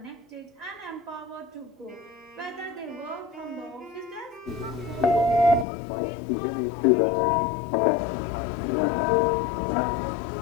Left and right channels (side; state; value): right; drops out; at 5.7 s